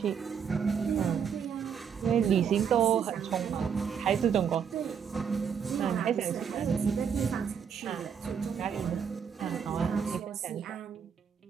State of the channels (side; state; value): left; quieter; 7.3 dB